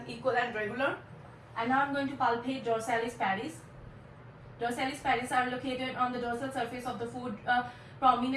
equal and regular. And now I'm going to palpate dorsalis paris. Dorsalis paris are located on the dorsal surface of the foot,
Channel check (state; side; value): identical; both; correlation 1.00